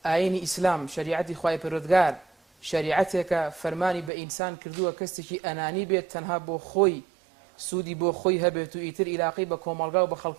ئاینی ئیسلام شریعەتی خوای پەروەردگار شریعەتێکە فەرمانی بە ئینسان کردووە کەسێکی ئەنانی بێت تەنها بۆ خۆی سوودی بۆ خۆی هەبێت و ئیتر ئیلاقی بە کۆمەڵگا و بە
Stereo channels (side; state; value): left; drops out; at 4.1 s